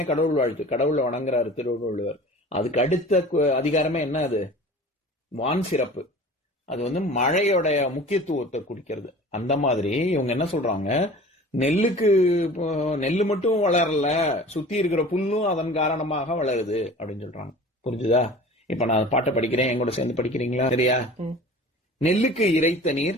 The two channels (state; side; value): normal; both; correlation 0.41